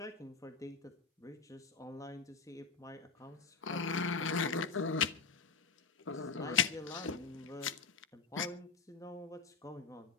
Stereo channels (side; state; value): right; quieter; 5.1 dB